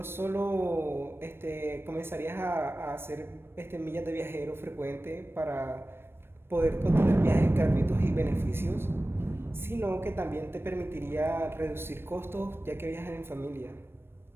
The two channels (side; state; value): left; late; 0.11 ms